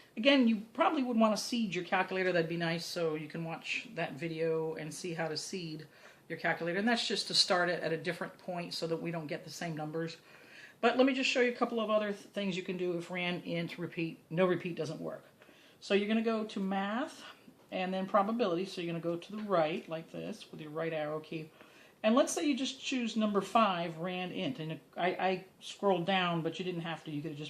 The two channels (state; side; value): identical; both; correlation 1.00